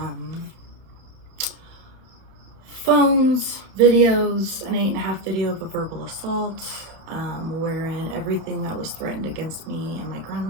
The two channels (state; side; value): late; left; 31 ms